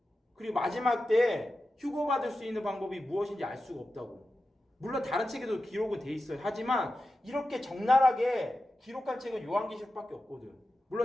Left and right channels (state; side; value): normal; both; correlation 0.92